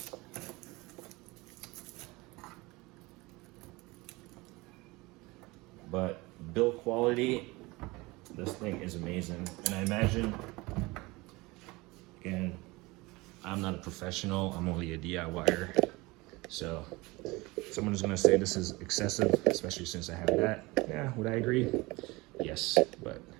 build quality, this thing is amazing. And I imagine, again, I'm not a professional, I'm only a DIYer. So someone is gonna say this is excessive, especially since I have that. Yeah, would I agree? Yes, but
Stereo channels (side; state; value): left; quieter; 22.9 dB